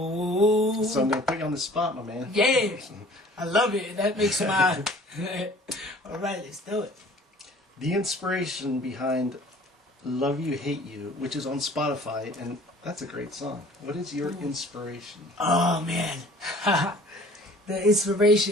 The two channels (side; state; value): both; normal; correlation 0.50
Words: So I'm going to put you on the spot, my man. Yeah. I love it. That makes my... All right, let's do it. The inspiration behind Love You, Hate You, which is on Spotify, and that's a great song. What is your inspiration? Oh, man. The